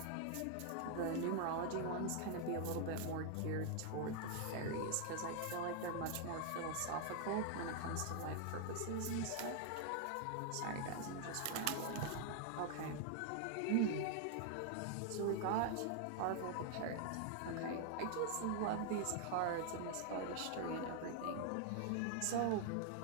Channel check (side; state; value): both; different; correlation 0.00